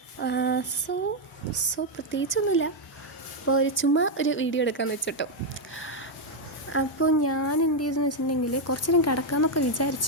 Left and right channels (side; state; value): both; normal; correlation 0.01